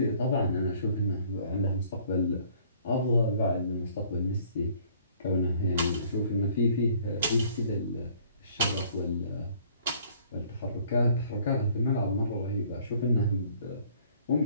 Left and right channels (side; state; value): both; inverted; correlation -0.58